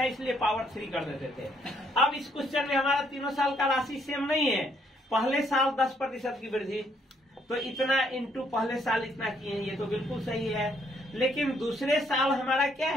इसलिए पावर 3 कर देते थे। अब इस क्वेश्चन में हमारा तीनों साल का राशि सेम नहीं है। पहले साल 10% की वृद्धि, तो इतना इंटू पहले साल इतना किए, ये तो बिल्कुल सही है। लेकिन दूसरे साल हमारा क्या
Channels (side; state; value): both; normal; correlation 0.69